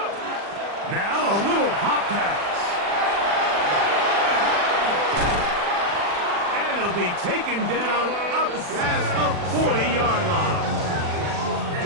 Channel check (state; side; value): late; left; 40 ms